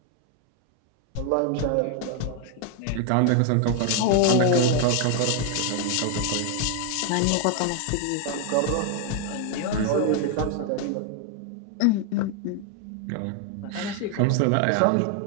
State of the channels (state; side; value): different; both; correlation 0.00